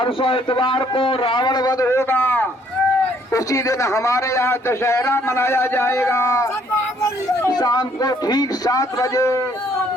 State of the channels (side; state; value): both; normal; correlation 0.65